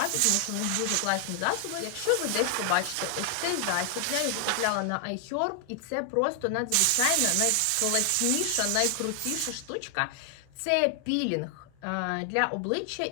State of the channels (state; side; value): different; both; correlation 0.00